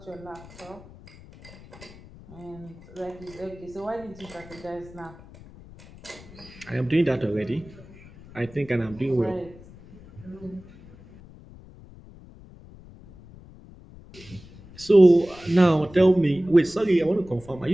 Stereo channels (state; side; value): noise; left; rumble, 20 dB below the sound